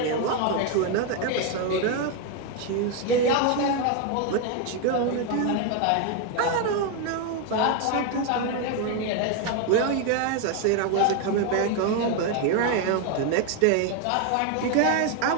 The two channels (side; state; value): both; different; correlation 0.01